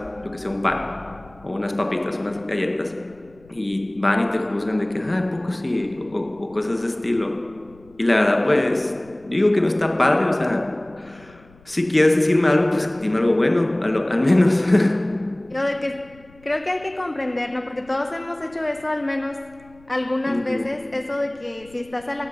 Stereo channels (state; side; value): noise; left; rumble, 27 dB below the sound